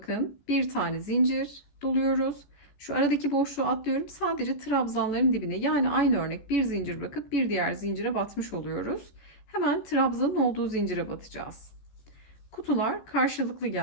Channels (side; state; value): right; late; 14 ms